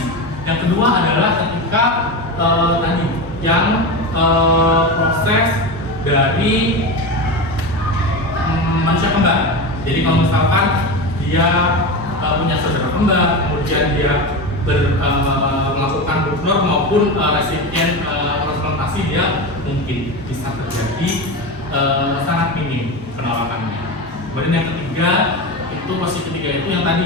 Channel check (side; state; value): both; normal; correlation 0.22